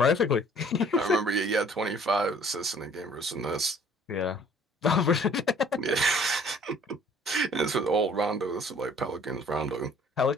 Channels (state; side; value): normal; both; correlation 0.55